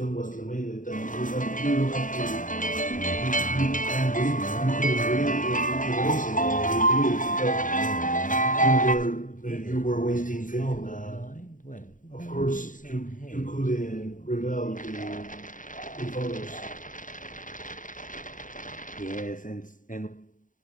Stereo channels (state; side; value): late; right; 0.38 ms